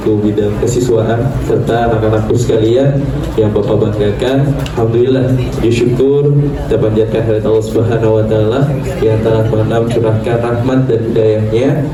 bidang kesiswaan, serta anak-anakku sekalian yang Bapak banggakan. Alhamdulillah, bersyukur kita panjatkan hadirat Allah Subhanahu wa taala yang telah mencurahkan rahmat dan hidayahnya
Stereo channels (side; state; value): both; identical; correlation 1.00